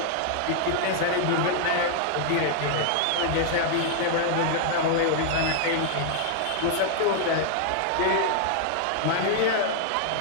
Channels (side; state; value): both; different; correlation 0.00